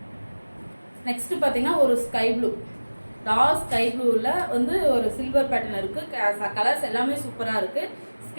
நெக்ஸ்ட்டு பார்த்தீங்கன்னா ஒரு ஸ்கை ப்ளூ, டார்க் ஸ்கை ப்ளூவில் வந்து ஒரு சில்வர் பேட்டர்ன் இருக்குது. கலர்ஸ் எல்லாமே சூப்பராக இருக்குது.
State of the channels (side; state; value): both; inverted; correlation -1.00